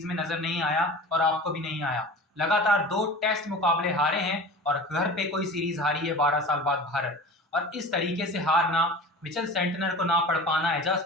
में नजर नहीं आया और आपको भी नहीं आया। लगातार 2 टेस्ट मुकाबले हारे हैं और घर पे कोई सीरीज हारी है 12 साल बाद भारत। और इस तरीके से हारना, मिचेल सेंटनर को ना पढ़ पाना, एजाज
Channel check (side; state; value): both; normal; correlation 0.37